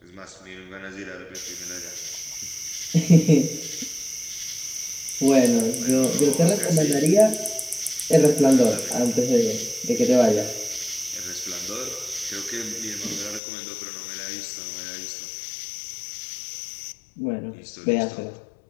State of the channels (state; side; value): drops out; right; at 13.4 s